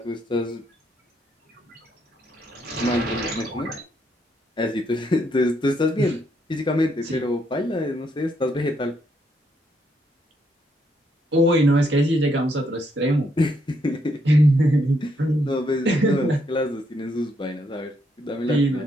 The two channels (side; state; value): both; normal; correlation 0.74